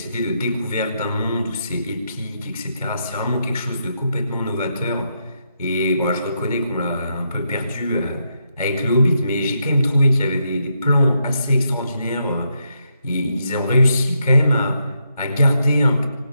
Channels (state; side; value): inverted; both; correlation -0.80